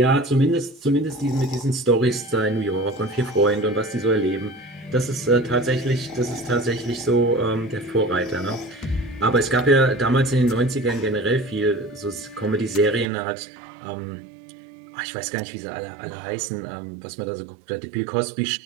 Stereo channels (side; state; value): left; drops out; at 13.1 s